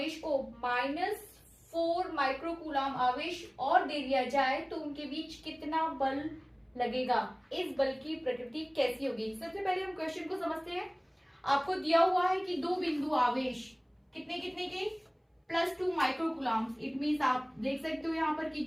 को -4 माइक्रोकूलम आवेश और दे दिया जाए तो उनके बीच कितना बल लगेगा, इस बल की प्रकृति कैसी होगी। सबसे पहले हम क्वेश्चन को समझते हैं। आपको दिया हुआ है कि दो बिंदु आवेश कितने कितने के +2 माइक्रोकूलम। इट मीन्स आप देख सकते हो यहाँ पर कि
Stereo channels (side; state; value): both; identical; correlation 1.00